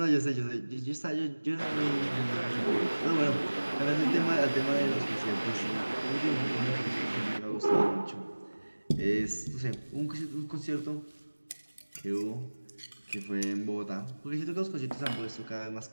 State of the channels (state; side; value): inverted; both; correlation -1.00